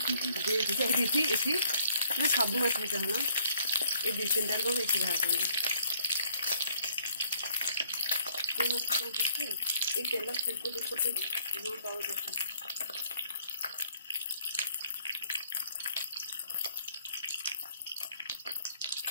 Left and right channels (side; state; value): both; inverted; correlation -0.64